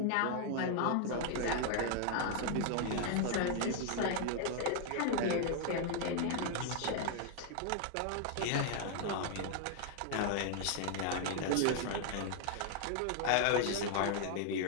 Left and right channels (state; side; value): different; both; correlation 0.00